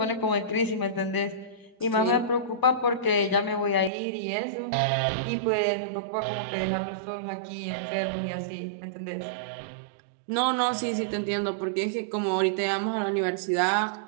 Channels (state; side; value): drops out; left; at 3.9 s